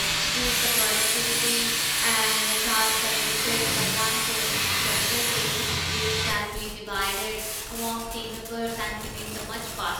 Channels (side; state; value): both; identical; correlation 1.00